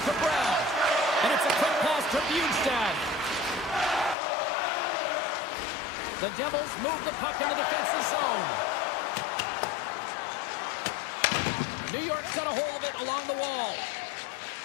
Brown. And it's a quick pass to Bjugstad. The Devils move the puck in the defensive zone. New York's got a hold of it along the wall.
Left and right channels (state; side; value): drops out; right; at 4.2 s